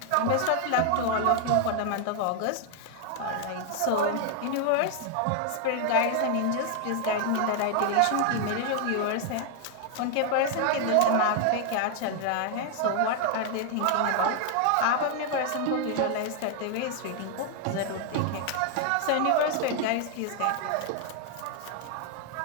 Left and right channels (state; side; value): different; both; correlation 0.00